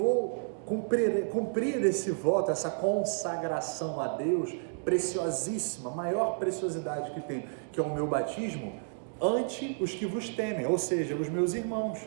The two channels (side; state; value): left; silent; digital silence